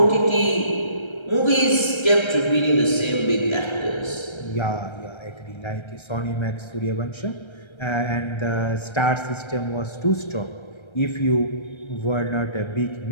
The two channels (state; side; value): late; right; 1.3 ms